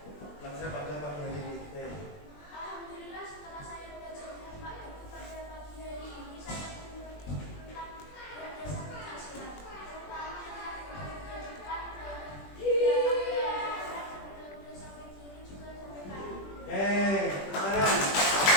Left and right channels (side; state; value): right; late; 20 ms